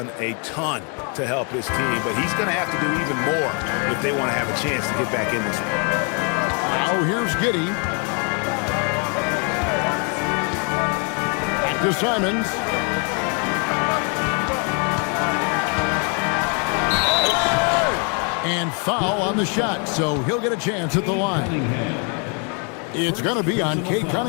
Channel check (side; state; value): right; quieter; 37.8 dB